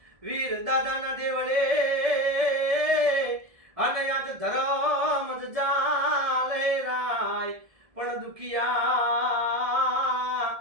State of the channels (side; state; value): left; late; 1.7 ms